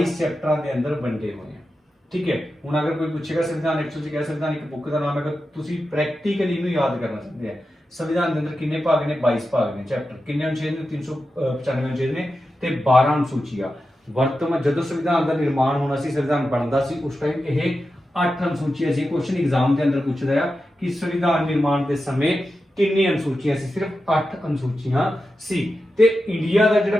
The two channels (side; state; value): both; normal; correlation 0.91